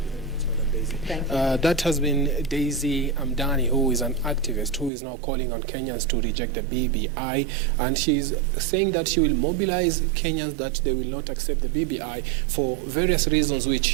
That has been Daisy Amdani, who is an activist who is now calling on Kenyans to reject the BBI, and she's saying that she will mobilize Kenyans, that they will not accept the BBI for various reasons which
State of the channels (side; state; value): left; drops out; at 4.9 s